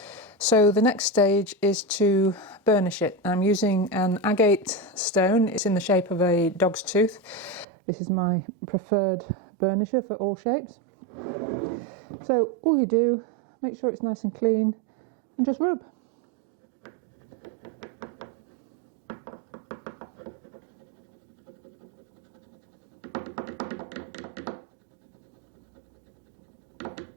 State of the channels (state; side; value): drops out; left; at 7.7 s